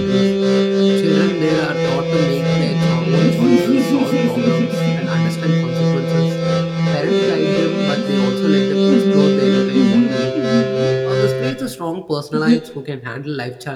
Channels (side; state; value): both; identical; correlation 1.00